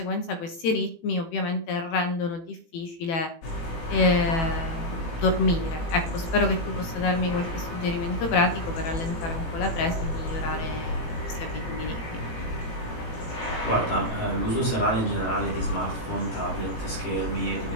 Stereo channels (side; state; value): right; late; 18 ms